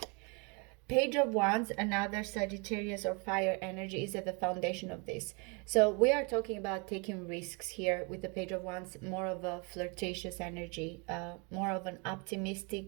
Page of Wands, another Sagittarius or fire energy, is at the foundation of this. So we are talking about taking risks here with the Page of Wands, more of a flirtatious energy, more of an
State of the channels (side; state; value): left; quieter; 32.2 dB